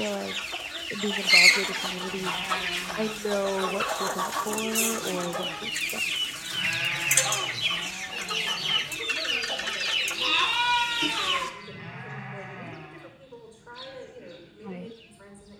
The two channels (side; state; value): both; identical; correlation 1.00